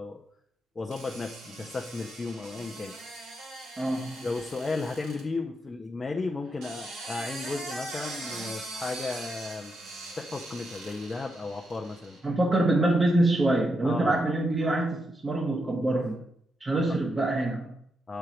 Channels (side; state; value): both; normal; correlation 0.83